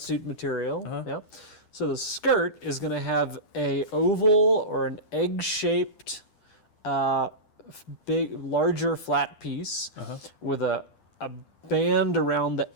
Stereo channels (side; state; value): right; late; 10 ms